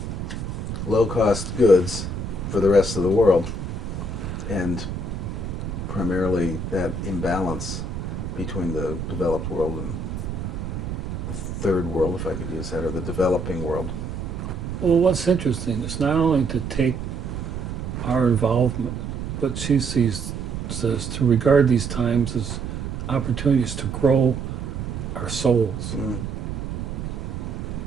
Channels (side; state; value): right; noise; rumble, 5 dB below the sound